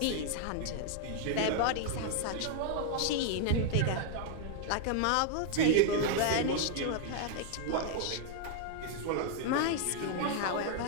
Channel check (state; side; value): different; both; correlation 0.00